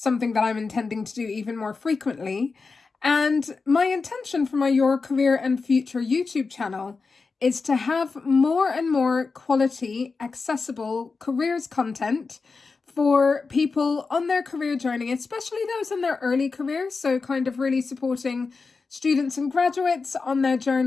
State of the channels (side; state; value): right; quieter; 4.4 dB